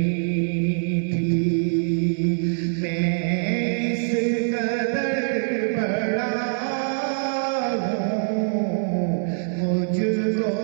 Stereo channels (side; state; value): left; silent; digital silence